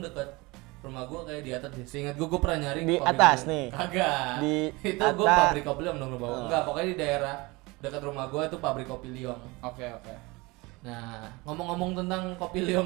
rumah gua kayak di atas deh. Seingat gua pernah nyari Di kopi atas liong. nih? Kagak. Di Itu gua atas. pabrik kopi liong dong bawah. Oh. Enggak, pokoknya di daerah dekat rumah gua itu pabrik kopi liong. Oke. Nah, ngomong-ngomong tentang kopi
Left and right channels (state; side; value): quieter; left; 24.0 dB